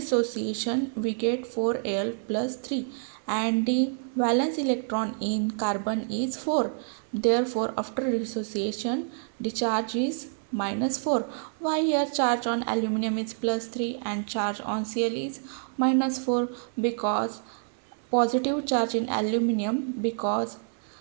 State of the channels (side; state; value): left; silent; 60 dB below the other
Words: we get 4Al plus 3 and the valence electron in carbon is 4. Therefore after dissociation the charge is -4. Why here charge on aluminium is +3 and charge on Cl is -4? Because positive charge in aluminium, because